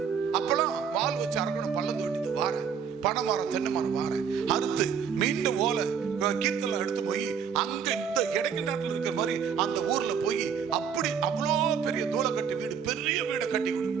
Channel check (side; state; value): left; quieter; 7.1 dB